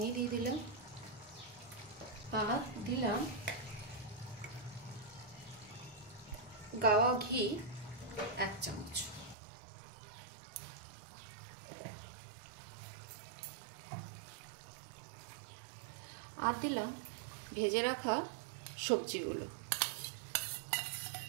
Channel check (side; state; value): left; drops out; at 9.3 s